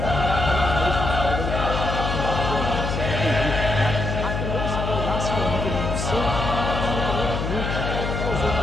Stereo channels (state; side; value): noise; left; hum, 3 dB below the sound